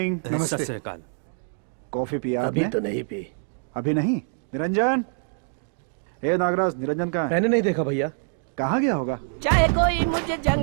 नमस्ते। सत श्री अकाल। कॉफी पिया अभी आपने? तो नहीं पी। अभी नहीं? निरंजन, ए नागराज, निरंजन कहाँ है? मैंने नहीं देखा भैया। कहाँ गया होगा? चाहे कोई मुझे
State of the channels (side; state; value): left; silent; digital silence